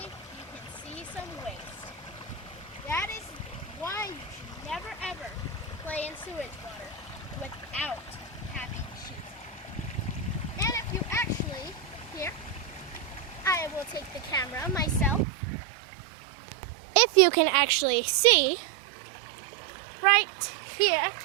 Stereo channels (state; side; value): drops out; left; at 15.2 s